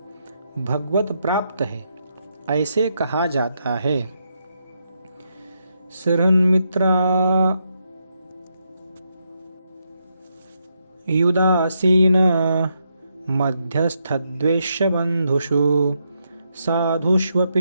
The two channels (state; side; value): inverted; both; correlation -0.80